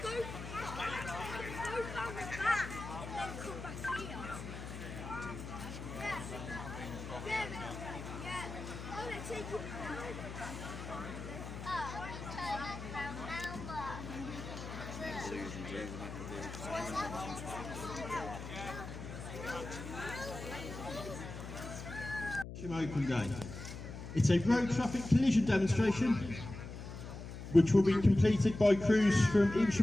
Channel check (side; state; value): left; noise; hum, 9 dB below the sound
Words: go round the back and then come back here. Yeah. Oh, they're taking it now. Open day. It's a road traffic collision demonstration which will be completed by crews from